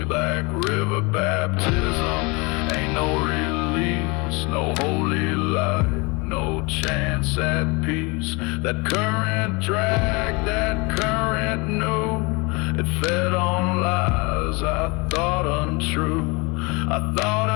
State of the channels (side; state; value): right; quieter; 27.8 dB